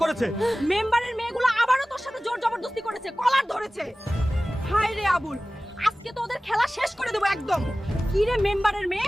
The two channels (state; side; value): normal; both; correlation 0.97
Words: করেছে। মেম্বারের মেয়েগুলো আবারও তোর সাথে জোর জবরদস্তি করেছে, কলার ধরেছে। হায় রে আবুল, আজকে তো ওদের খেলা শেষ করে দেবো একদম। কি রে মেম্বারের মেয়ে,